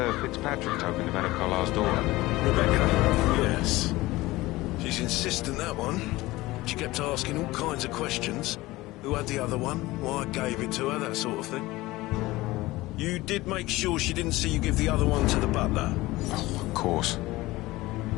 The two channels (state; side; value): quieter; right; 19.2 dB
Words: Fitzpatrick token to Madame Carlyle's daughter? Rebecca, yes. She's insistent, that one. She kept asking all kinds of questions. Who had the other one? Why I gave it to her, that sort of thing. You did make sure she didn't see you give the other one to the butler? Oh, of course.